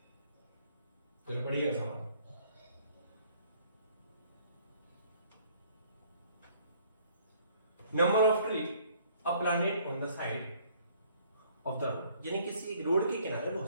तो पढ़िएगा सवाल। Number of tree a planet on the side of the road, यानी किसी एक रोड के किनारे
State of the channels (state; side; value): inverted; both; correlation -0.60